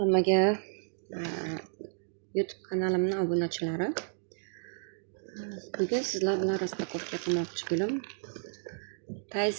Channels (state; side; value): silent; left; digital silence